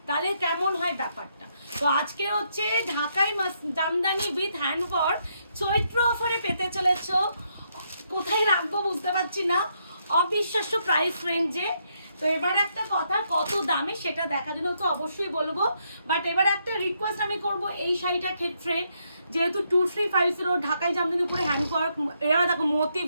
তাহলে কেমন হয় ব্যাপারটা। তো আজকে হচ্ছে ঢাকাই জামদানি উইথ হ্যান্ডওয়ার্ক চৈত্র অফারে পেতে চলেছো। কোথায় রাখবো বুঝতে পারছি না, অবিশ্বাস্য প্রাইস রেঞ্জে। তো এবার একটা কথা, কত দামে সেটা দেখার জন্য তো অবশ্যই বলবো, বাট এবার একটা রিকোয়েস্ট আমি করব এই শাড়িটার ক্ষেত্রে, যেহেতু 2350 ঢাকাই জামদানির উপরে হ্যান্ডওয়ার্ক, এবার দেখো মতি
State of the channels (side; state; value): both; inverted; correlation -0.76